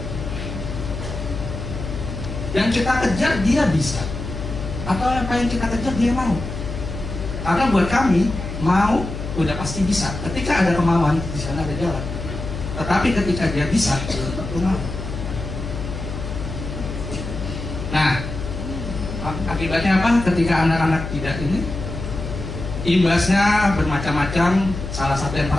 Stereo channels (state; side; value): noise; left; hum, 7 dB below the sound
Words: Yang kita kejar dia bisa, atau apa yang kita kejar dia mau? Karena buat kami, mau udah pasti bisa. Ketika ada kemauan, di sana ada jalan. Tetapi ketika dia bisa, belum tentu mau. Nah, akibatnya apa? Ketika anak-anak tidak ini, imbasnya bermacam-macam. Salah satu yang